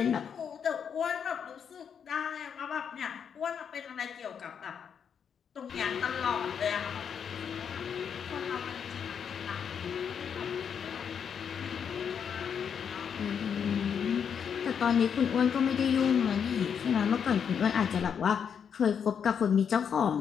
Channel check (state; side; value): quieter; right; 7.4 dB